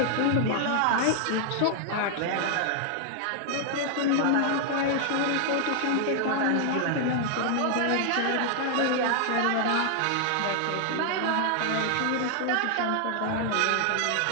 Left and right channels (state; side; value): different; both; correlation 0.00